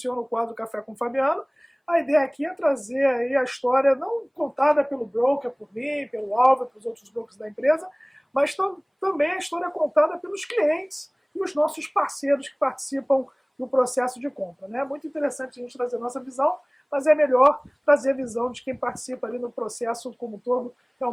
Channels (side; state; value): both; identical; correlation 1.00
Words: o quadro Café com o Fabiano, a ideia aqui é trazer aí a história não contada pelo broker, por mim, pelo Álvaro, pelos outros brokers da empresa, mas também a história contada pelos clientes e os nossos parceiros que participam do processo de compra. É muito interessante a gente trazer a nossa visão, mas é melhor trazer a visão de quem participa ali no processo como um todo,